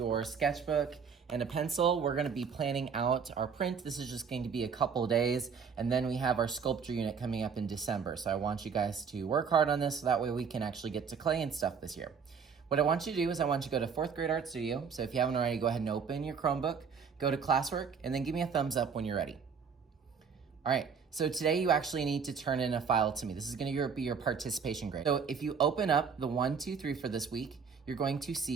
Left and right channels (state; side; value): quieter; left; 6.2 dB